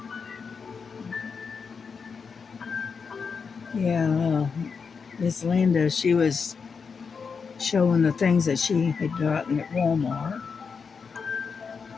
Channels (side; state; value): right; quieter; 5.6 dB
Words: Yeah, Miss Linda, she was showing the things that she had gotten at Walmart,